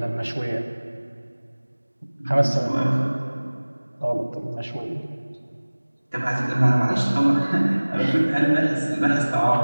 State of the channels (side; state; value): both; inverted; correlation -1.00